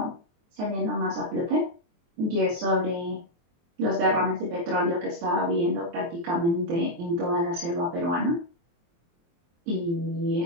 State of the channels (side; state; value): left; late; 23 ms